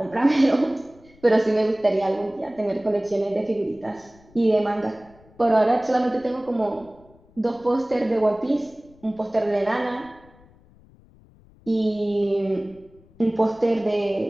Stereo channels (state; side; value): noise; left; rumble, 27 dB below the sound